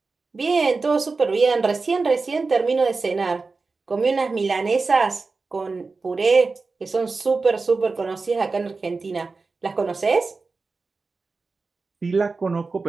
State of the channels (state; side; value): quieter; left; 4.1 dB